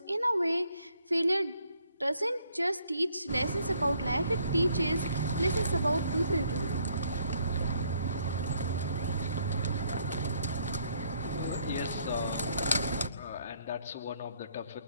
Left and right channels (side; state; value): both; inverted; correlation -0.68